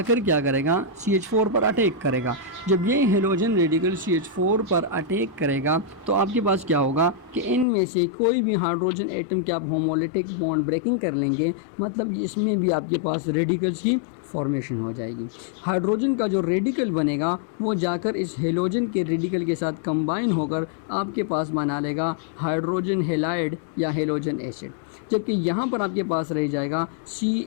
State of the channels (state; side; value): drops out; right; at 7.7 s